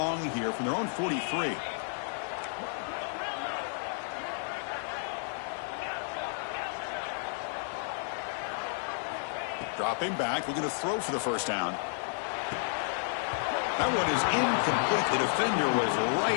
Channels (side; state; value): right; silent; 57 dB below the other